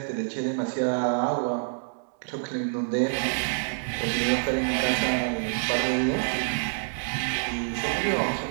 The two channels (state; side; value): silent; left; digital silence